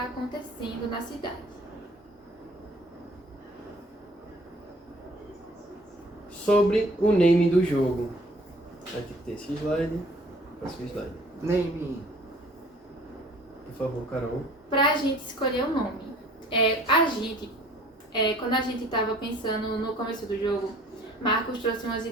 acontecendo na cidade. sobre o name do jogo. Vai ter que ter esse slide. Próximo slide. Name. Por favor, Carol. Pra gente escolher o nome. Quando a gente estava pensando no começo do jogo, Marcos trouxe umas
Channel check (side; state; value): both; normal; correlation 0.53